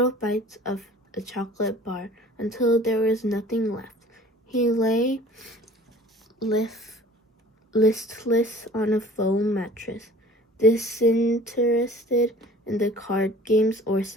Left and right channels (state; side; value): normal; both; correlation 0.47